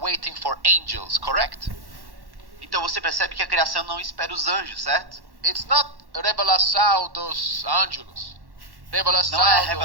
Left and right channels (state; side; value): late; left; 1.1 ms